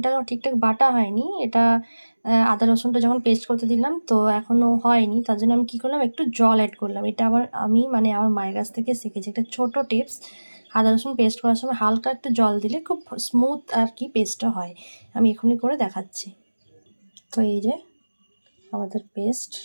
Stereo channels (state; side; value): inverted; both; correlation -1.00